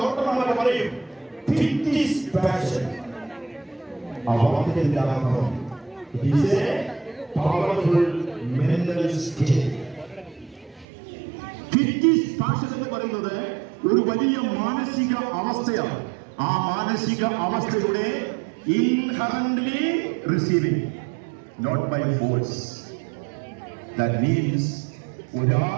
ഡോക്ടർമാരെ പറയും എന്ന് പറയുന്നത് ഒരു വലിയ മാനസിക അവസ്ഥയാണ്. ആ മാനസിക അവസ്ഥയുടെ inherently receiving, not by force. That means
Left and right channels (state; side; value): drops out; left; at 10.9 s